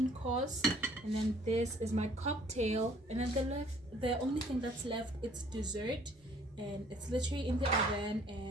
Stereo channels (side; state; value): both; normal; correlation 0.58